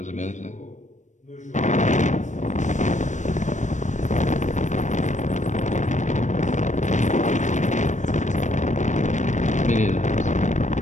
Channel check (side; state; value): right; late; 0.35 ms